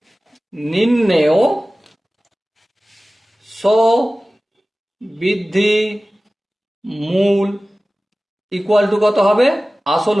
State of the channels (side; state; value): both; normal; correlation 0.97